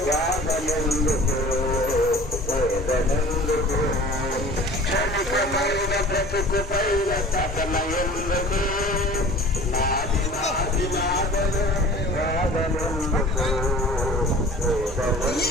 గాదనెందుకు వేదనెందుకు క్షణికమైన బ్రతుకు పైన తపన ఎందుకు నాది నాది నాదనే గాదనెందుకు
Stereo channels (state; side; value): normal; both; correlation 0.43